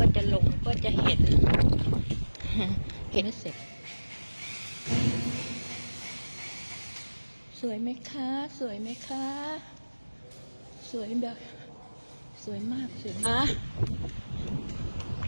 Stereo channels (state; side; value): inverted; both; correlation -1.00